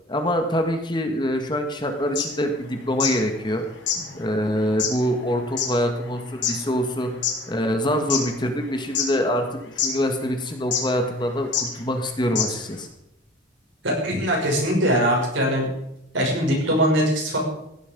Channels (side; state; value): both; normal; correlation 0.43